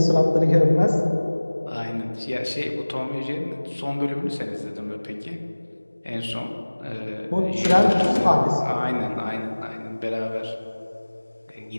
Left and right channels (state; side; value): inverted; both; correlation -1.00